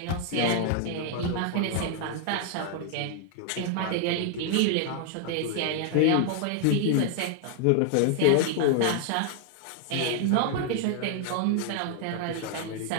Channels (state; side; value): different; both; correlation 0.00